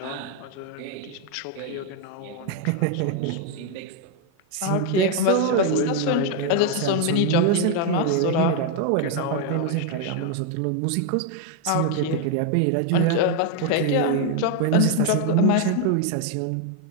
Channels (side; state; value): both; different; correlation 0.01